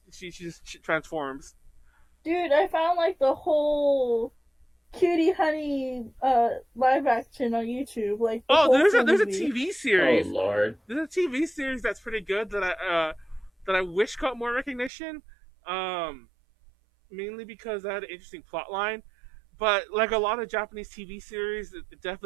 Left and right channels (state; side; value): drops out; left; at 14.9 s